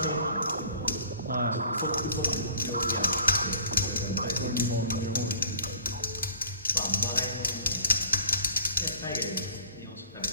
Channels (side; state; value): both; inverted; correlation -0.50